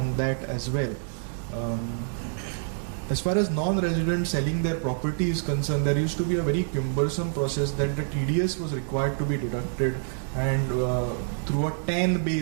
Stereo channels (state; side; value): silent; left; digital silence